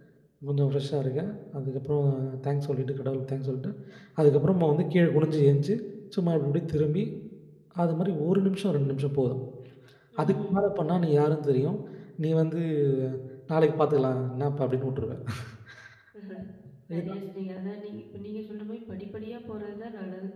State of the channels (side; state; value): both; identical; correlation 1.00